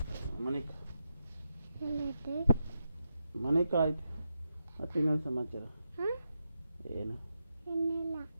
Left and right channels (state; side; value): inverted; both; correlation -0.86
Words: ಮನೆಕ ಆಯ್ತು. ಮತ್ತೆ ಇನ್ನೊಂದು ಸಮಾಚಾರ ಏನು?